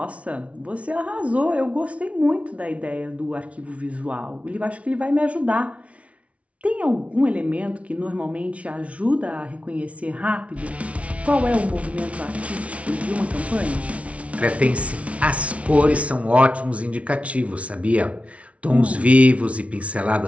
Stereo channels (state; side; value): late; left; 0.064 ms